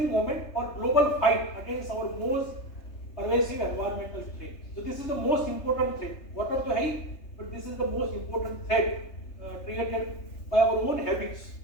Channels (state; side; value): late; right; 3.3 ms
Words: moment और global fight against our most pervasive environmental threat. So this is the most important threat. Water तो है ही, but this is the most important threat created by our own habits.